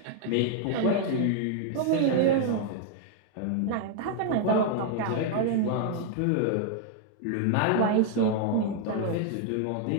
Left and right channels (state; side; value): different; both; correlation 0.00